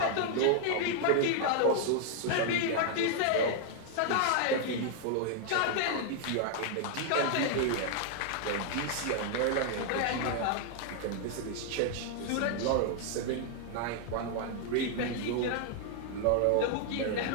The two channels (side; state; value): both; different; correlation 0.00